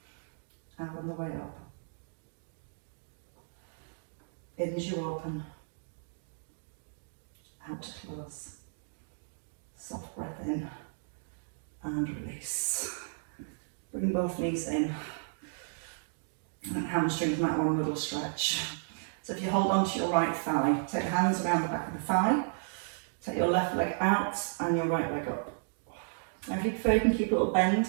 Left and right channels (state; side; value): silent; left; digital silence